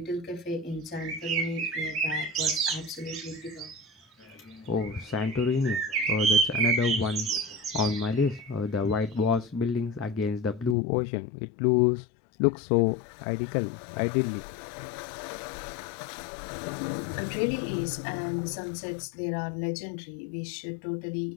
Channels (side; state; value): right; drops out; at 10.8 s